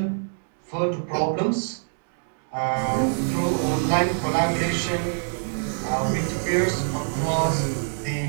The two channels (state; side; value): silent; left; 62 dB below the other